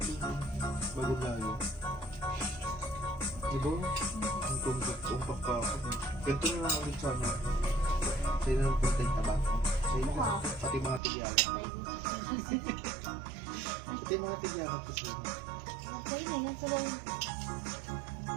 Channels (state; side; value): drops out; left; at 11.0 s